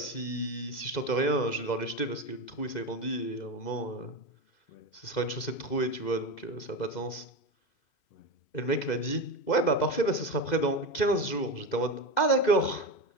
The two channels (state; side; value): late; right; 2.0 ms